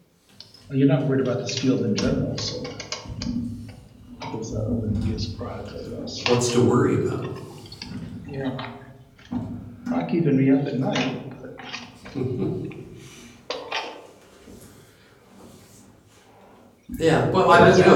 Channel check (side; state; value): both; identical; correlation 1.00